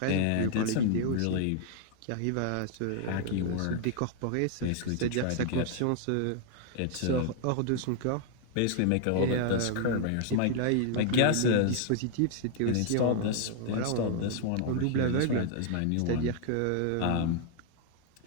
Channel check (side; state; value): both; different; correlation 0.00